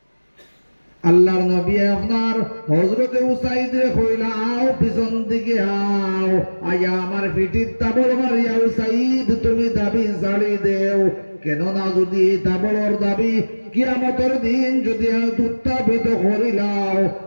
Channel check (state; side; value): inverted; both; correlation -1.00